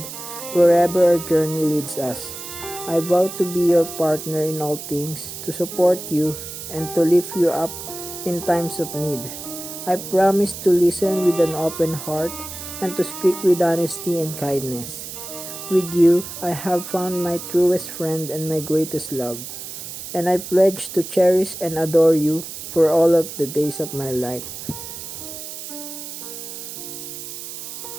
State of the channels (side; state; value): right; noise; hiss, 10 dB below the sound